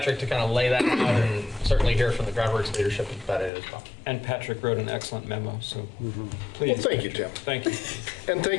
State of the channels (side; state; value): right; drops out; at 3.5 s